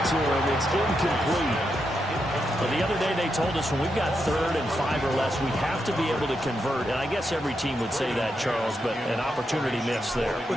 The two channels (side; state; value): both; normal; correlation 0.84